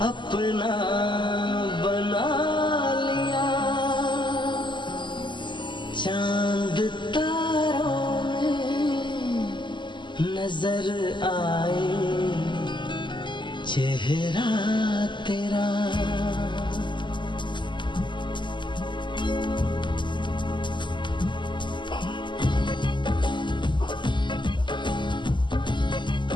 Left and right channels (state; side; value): late; right; 0.23 ms